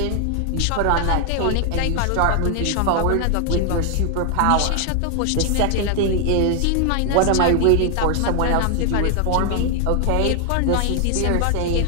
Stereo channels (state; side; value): different; both; correlation 0.00